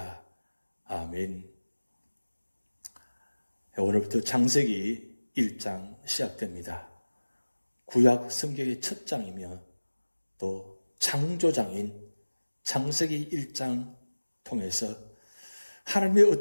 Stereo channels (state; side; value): inverted; both; correlation -1.00